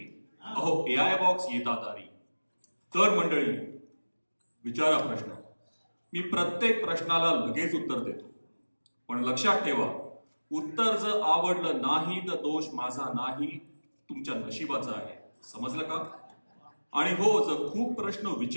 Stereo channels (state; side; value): inverted; both; correlation -1.00